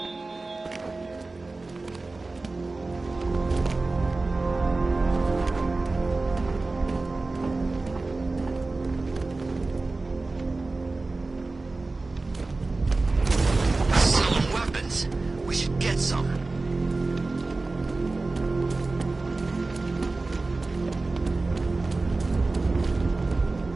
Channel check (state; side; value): quieter; left; 3.4 dB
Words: Selling weapons. We should get some.